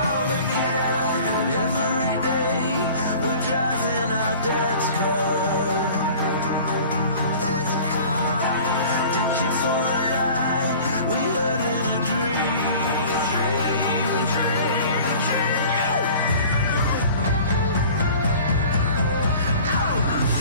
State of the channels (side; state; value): both; inverted; correlation -0.44